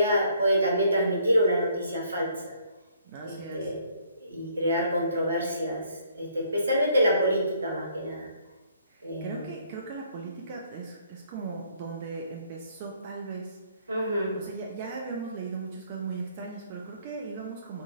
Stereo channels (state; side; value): inverted; both; correlation -0.65